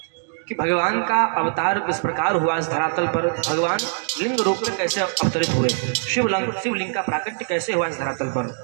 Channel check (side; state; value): left; silent; digital silence